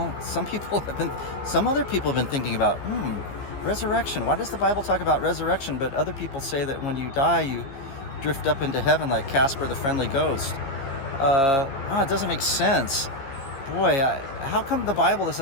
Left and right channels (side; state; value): right; late; 15 ms